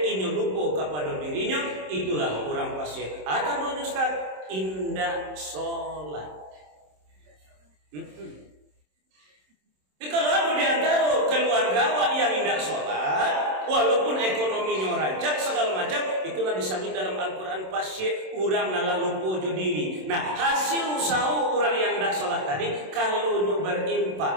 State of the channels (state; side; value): late; left; 27 ms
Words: inyo lupa kepada dirinya, itulah orang pasien. Atau doanya Ustaz, indah sholat. Jadi kalau ada di antara keluarga awak yang indah sholat, walaupun ekonominya rancak segala macam, itulah disebut dalam Al-Quran pasye orang nalah lupa jo diri. Nah, hasil usaha orang yang indah sholat tadi, kalau nyu